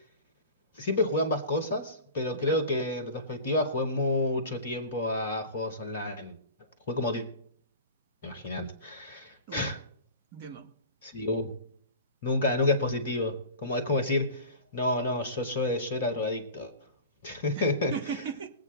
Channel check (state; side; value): inverted; both; correlation -0.35